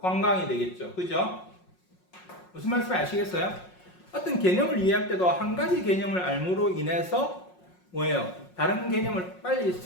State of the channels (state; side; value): late; right; 5.5 ms